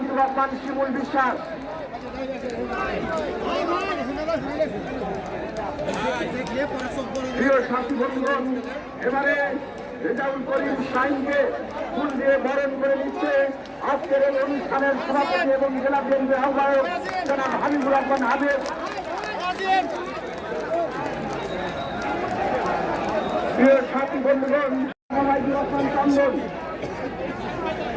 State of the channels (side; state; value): both; identical; correlation 1.00